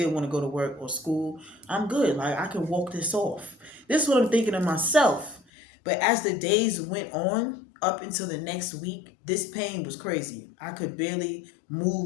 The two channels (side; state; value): right; drops out; at 5.4 s